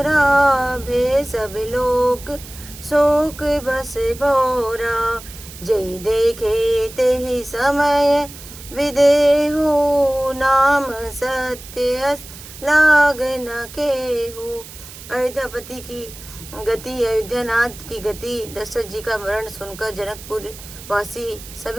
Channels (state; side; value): noise; right; hiss, 16 dB below the sound